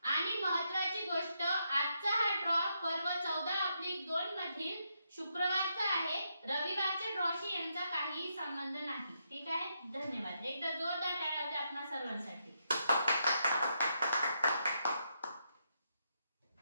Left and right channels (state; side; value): inverted; both; correlation -0.80